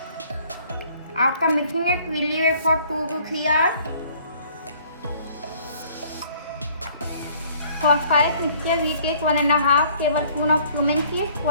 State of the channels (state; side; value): inverted; both; correlation -0.58